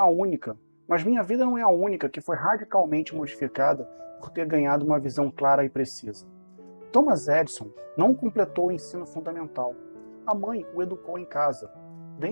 única que foi radicalmente modificada por ter ganhado uma visão clara e precisa. Thomas Edison não completou o ensino fundamental. A mãe o educou em casa.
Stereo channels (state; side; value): inverted; both; correlation -1.00